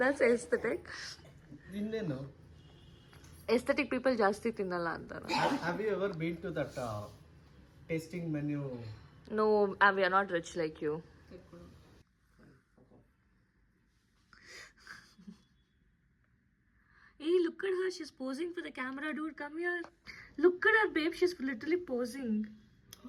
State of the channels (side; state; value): both; identical; correlation 1.00